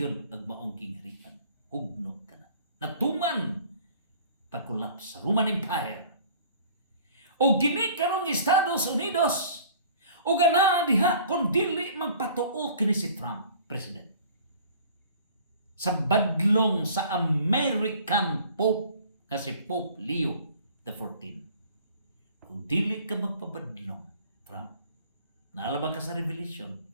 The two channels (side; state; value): both; inverted; correlation -0.50